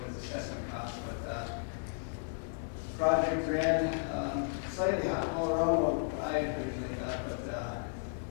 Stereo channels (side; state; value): right; silent; digital silence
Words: as assessment cost, but project ran slightly around what I originally thought, but